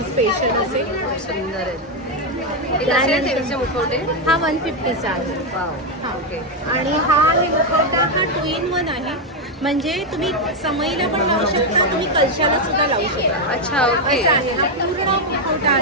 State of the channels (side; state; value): both; normal; correlation 0.04